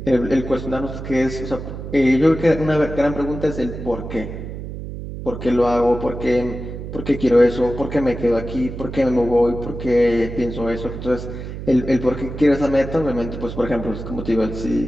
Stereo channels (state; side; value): noise; right; hum, 9 dB below the sound